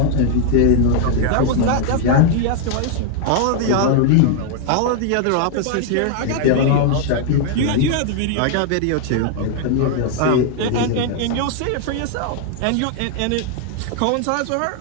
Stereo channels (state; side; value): different; both; correlation 0.00